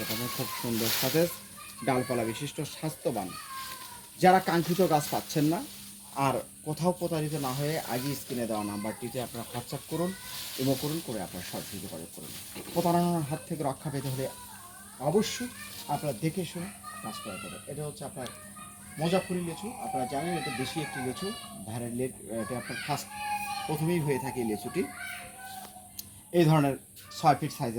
পারবেন, খুব সুন্দর সতেজ, ডালপালা বিশিষ্ট, স্বাস্থ্যবান। যারা কাঙ্ক্ষিত গাছ পাচ্ছেন না আর কোথাও প্রতারিত না হয়ে আগে স্ক্রিনে দেওয়া নাম্বারটিতে আপনারা হোয়াটসঅ্যাপ করুন, ইমো করুন, করে আপনারা সরাসরি যোগাযোগ করুন। প্রতারণার হাত থেকে রক্ষা পেতে হলে অবশ্যই আপনারা দেখে শুনে কাজ করা যাবে। এটা হচ্ছে আপনার মোজাফফরি লিচু। আপনারা জানেন এটা বেশি একটি লিচু, ধারের লেট, এটা আপনার ফার্স্ট প্রথমেই হয়ে থাকে এই লিচুটি। এই ধরনের 6 ফিট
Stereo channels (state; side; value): identical; both; correlation 1.00